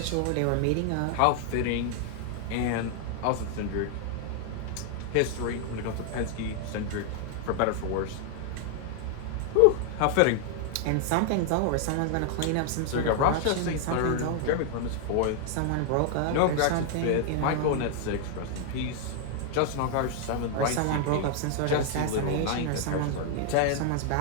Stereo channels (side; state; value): both; different; correlation 0.00